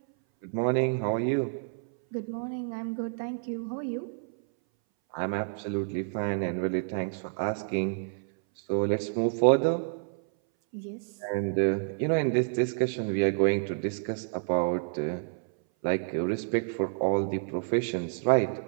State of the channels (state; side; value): silent; left; 59 dB below the other